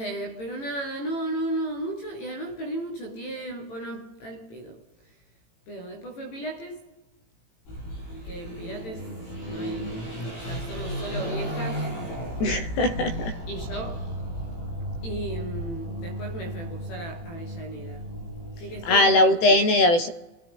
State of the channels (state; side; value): late; right; 18 ms